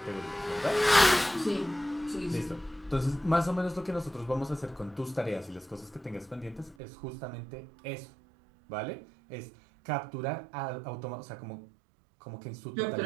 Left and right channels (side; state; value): left; drops out; at 6.8 s